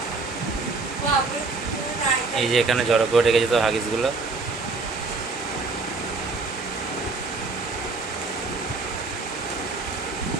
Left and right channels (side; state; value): left; quieter; 3.9 dB